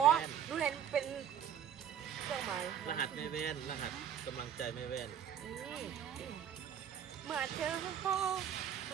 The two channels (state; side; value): quieter; left; 9.1 dB